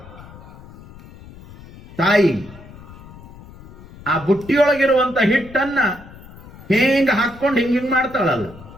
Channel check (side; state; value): left; noise; rumble, 19 dB below the sound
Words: ತಾಯಿ ಆ ಬುಟ್ಟಿಯೊಳಗಿರುವಂತ ಹಿಟ್ಟನ್ನ ಹಿಂಗ ಹಾಕೊಂಡು ಹಿಂಗ ಮಾಡ್ತಾಳಲ್ಲ,